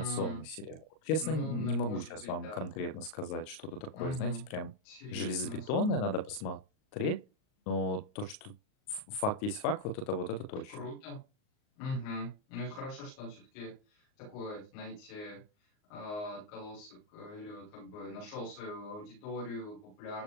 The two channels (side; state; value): right; late; 38 ms